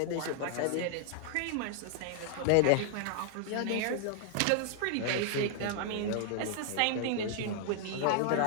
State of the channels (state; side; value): different; both; correlation 0.00